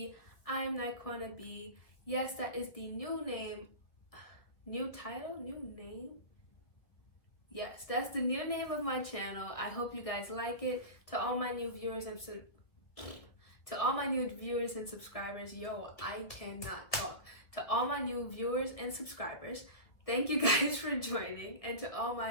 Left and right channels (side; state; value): right; late; 1.8 ms